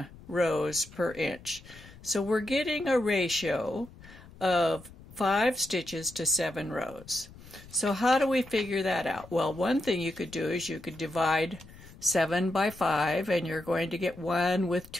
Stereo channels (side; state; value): left; noise; rumble, 20 dB below the sound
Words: rows per inch. So we're getting a ratio of 5 stitches to 7 rows. So how do we figure that out? Well, one thing you could do is you could divide 7 by 5, and you're going to get 1 with